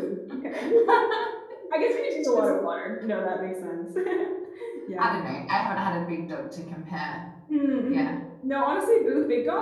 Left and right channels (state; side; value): identical; both; correlation 1.00